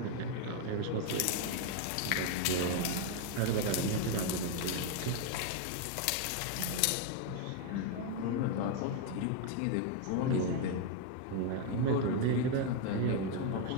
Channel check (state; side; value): different; both; correlation 0.01